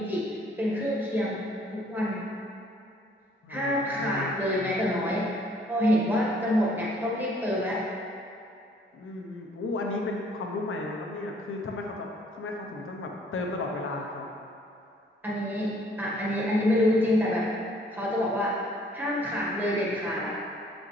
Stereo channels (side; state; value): both; normal; correlation 0.60